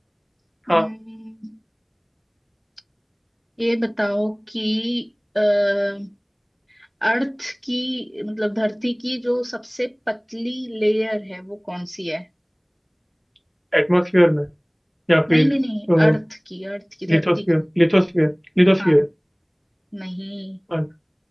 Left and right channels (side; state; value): both; identical; correlation 1.00